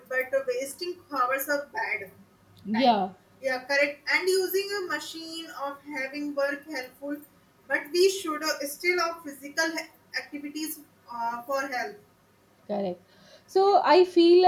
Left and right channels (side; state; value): both; identical; correlation 1.00